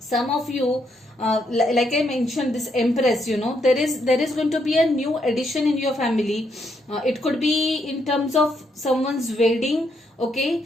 of you, like I mentioned, this Empress, there is going to be a new addition in your family. It could be in terms of someone's wedding,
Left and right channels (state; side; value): normal; both; correlation 0.76